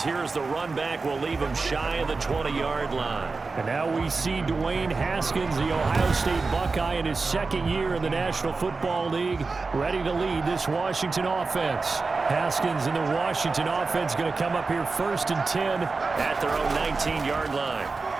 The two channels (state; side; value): quieter; left; 4.1 dB